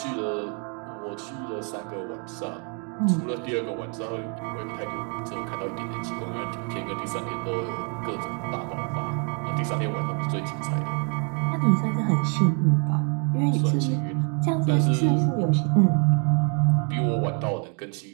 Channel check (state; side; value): quieter; left; 38.7 dB